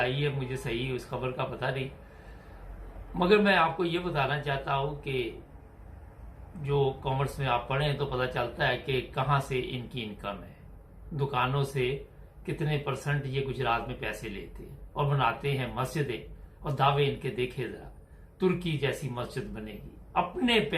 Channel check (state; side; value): identical; both; correlation 1.00